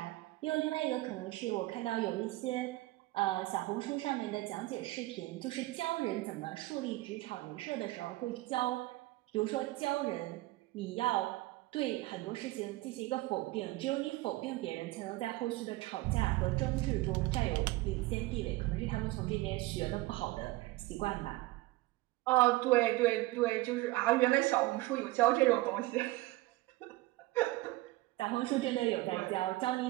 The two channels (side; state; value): left; quieter; 19.7 dB